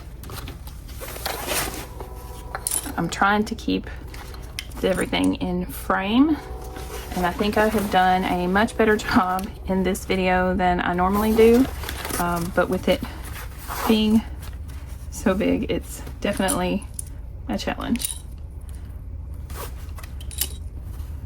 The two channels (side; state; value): both; identical; correlation 1.00